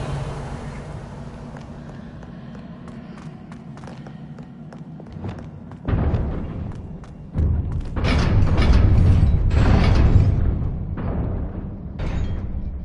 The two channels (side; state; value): both; identical; correlation 1.00